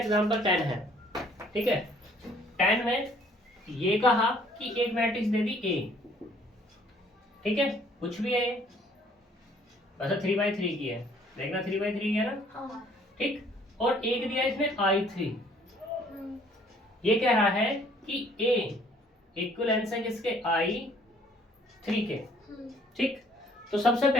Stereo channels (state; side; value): normal; both; correlation 0.60